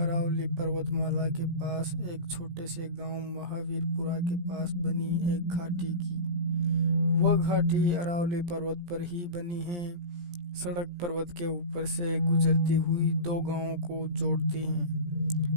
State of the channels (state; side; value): late; left; 17 ms